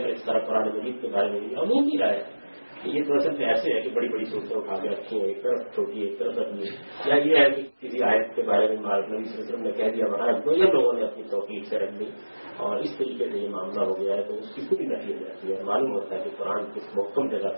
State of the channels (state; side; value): inverted; both; correlation -1.00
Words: اور اس طرح قرآن مجید کے بارے میں بھی عمومی رائے ہے کہ یہ تو اصل میں ایسے ہے کہ بڑی بڑی صورتیں اٹھا کے رکھی ہیں, ایک طرف چھوٹی ایک طرف رکھنی ہے, یا یہ ہے کہ کسی آیت کے بارے میں نبی صلی اللہ علیہ وسلم نے کہہ دیا وہاں رکھ دو, یا لوگوں نے اپنی توقیق سے رکھ دی اور اس طریقے سے یہ معاملہ ہو گیا ہے تو اس کی پوری نفی ہو جاتی ہے. معلوم ہوتا ہے کہ قرآن کس محکم جگہ